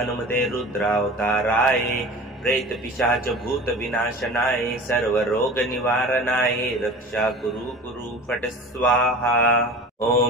रुद्रावताराय प्रेत पिशाच भूत विनाशनाय सर्वरोग निवारणाय रक्षा कुरु कुरु फट स्वाहा।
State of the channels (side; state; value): both; normal; correlation 0.38